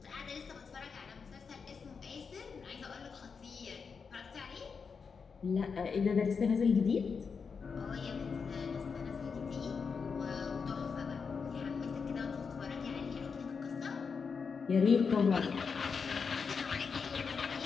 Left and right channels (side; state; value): right; quieter; 5.6 dB